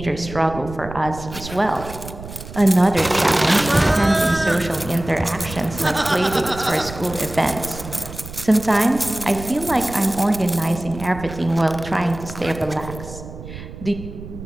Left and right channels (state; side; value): noise; right; rumble, 13 dB below the sound